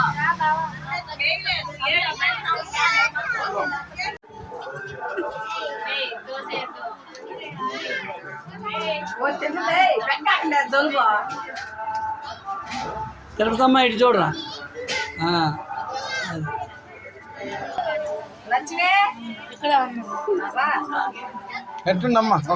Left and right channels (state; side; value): identical; both; correlation 1.00